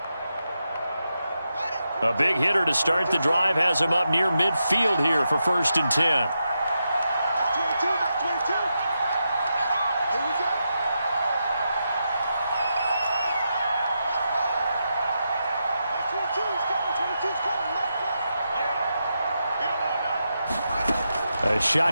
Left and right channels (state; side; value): inverted; both; correlation -0.86